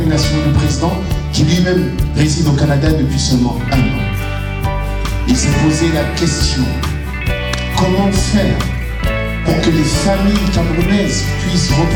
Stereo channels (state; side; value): identical; both; correlation 1.00